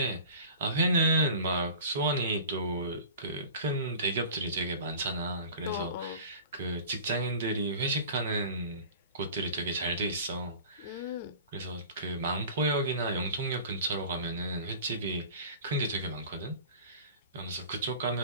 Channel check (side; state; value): both; inverted; correlation -0.40